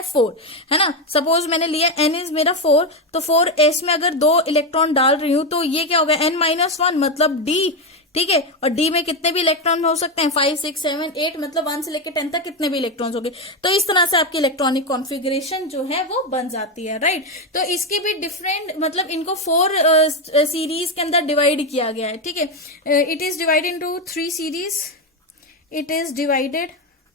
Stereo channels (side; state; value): both; normal; correlation 0.09